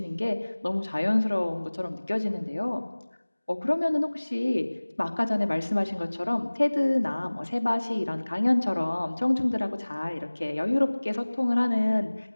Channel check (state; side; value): inverted; both; correlation -1.00